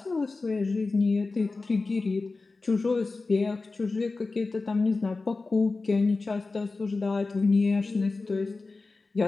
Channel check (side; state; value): right; quieter; 3.7 dB